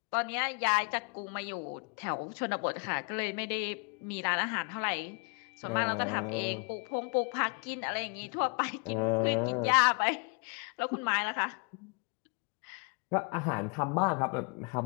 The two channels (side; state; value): right; quieter; 33.9 dB